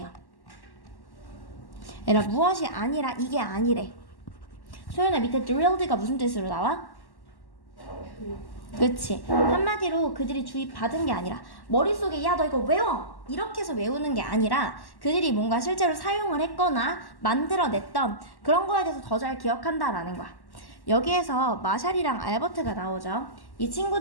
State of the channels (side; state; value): right; late; 1.1 ms